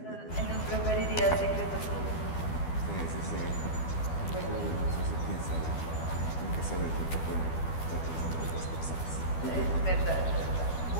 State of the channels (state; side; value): late; right; 12 ms